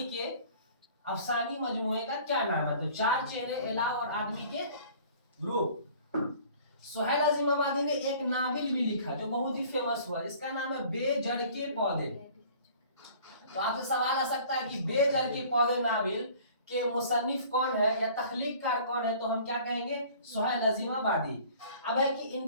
के अफसानी मजमूए का क्या नाम है? तो चार चेहरे, अलाव और आदमी के रूप। सुहैल अजीमाबादी ने एक नावल भी लिखा जो बहुत ही फेमस हुआ, इसका नाम है बेजड़ के पौधे। तो आपसे सवाल आ सकता है कि बेजड़ के पौधे नावल के मुसन्निफ कौन है या तख्लीककार कौन है? तो हम क्या कहेंगे? सुहैल अजीमाबादी। अब है कि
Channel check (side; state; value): both; inverted; correlation -0.50